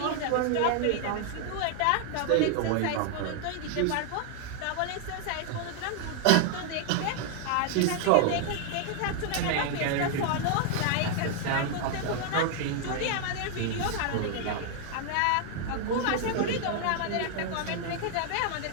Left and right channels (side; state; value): both; different; correlation 0.00